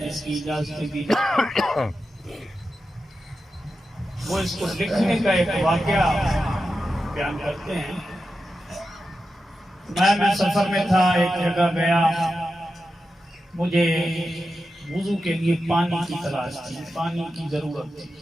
اس کی اجازت بھی وہ اس کو لکھنے کا ایک واقعہ بیان کرتے ہیں۔ میں سفر میں تھا، ایک جگہ گیا، مجھے وضو کے لیے پانی کی تلاش تھی، پانی کی ضرورت تھی۔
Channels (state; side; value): normal; both; correlation 0.90